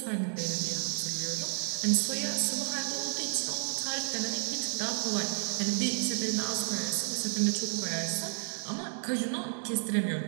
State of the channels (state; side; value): silent; left; digital silence